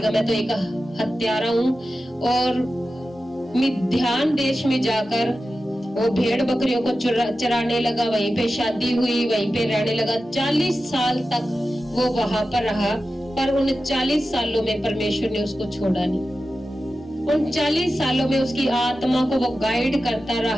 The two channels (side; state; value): both; normal; correlation 0.93